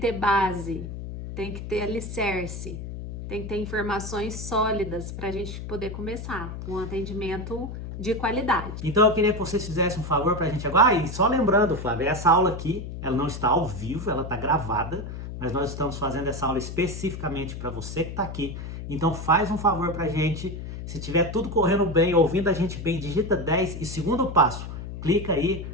ter base, tem que ter alicerce, tem que ter informações sólidas para a gente poder começar um atendimento de qualidade. Então eu queria que vocês fizessem um favor pra gente agora. E só lembrando, Flávia, essa aula aqui, ela não está ao vivo, ela está gravada, mas nós estamos fazendo essa aula especificamente para você que está aqui. Então faz um favor pra gente, se tiver tudo correndo bem, ouvindo a gente bem, digita 10 e segundo passo, clica aí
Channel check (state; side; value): noise; left; hum, 8 dB below the sound